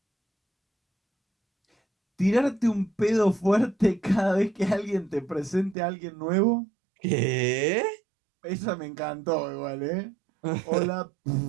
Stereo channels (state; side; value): drops out; left; at 5.8 s